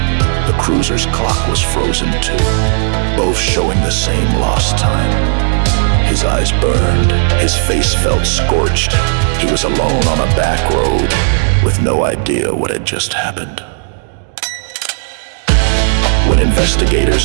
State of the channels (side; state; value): left; silent; digital silence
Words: The cruiser's clock was frozen too, both showing the same lost time. His eyes burned, his face felt scorched. He was alone on a back road, with no idea what had just happened. When